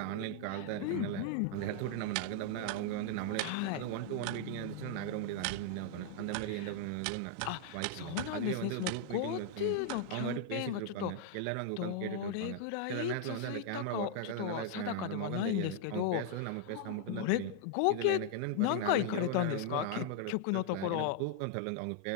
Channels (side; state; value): both; different; correlation 0.00